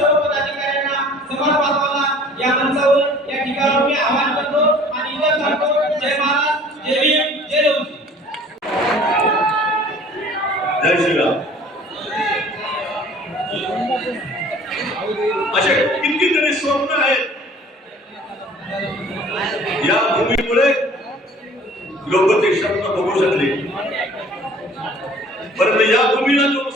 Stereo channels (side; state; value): both; normal; correlation 0.50